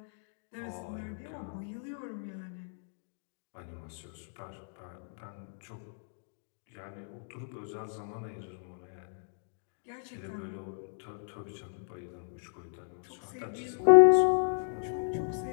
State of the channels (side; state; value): right; silent; digital silence